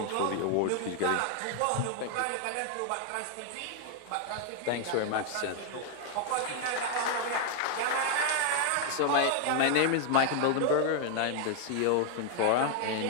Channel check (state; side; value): different; both; correlation 0.00